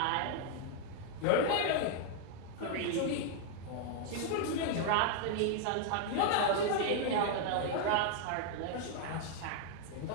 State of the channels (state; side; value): different; both; correlation 0.00